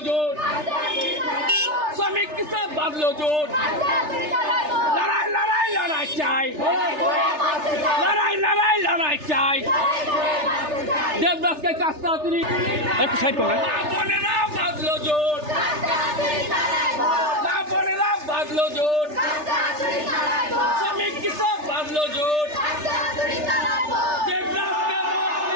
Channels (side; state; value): left; late; 3.3 ms